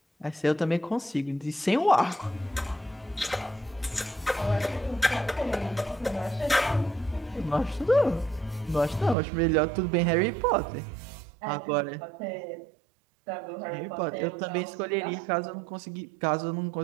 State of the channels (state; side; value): drops out; left; at 9.2 s